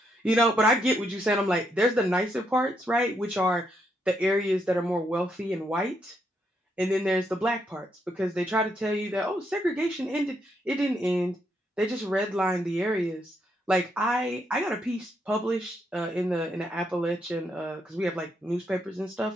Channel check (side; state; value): both; normal; correlation 0.77